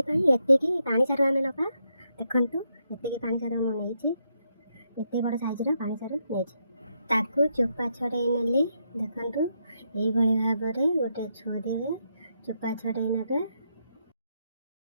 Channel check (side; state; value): both; inverted; correlation -0.79